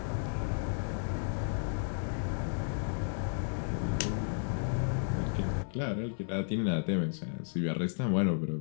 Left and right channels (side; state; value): right; silent; digital silence